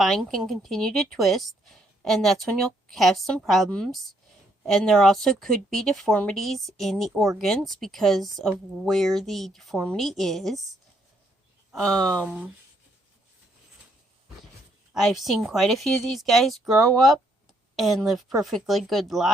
can continue to twist, and that's when you'll have some problems. And there also could be deformities in the organs because of where the deformity is. I've seen quite a few of these guys grow up and live perfectly good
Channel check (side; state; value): both; normal; correlation 0.71